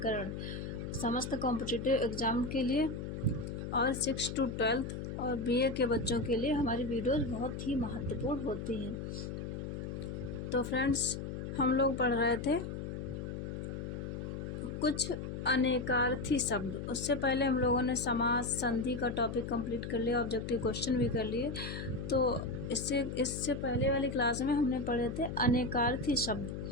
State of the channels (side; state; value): left; noise; hum, 6 dB below the sound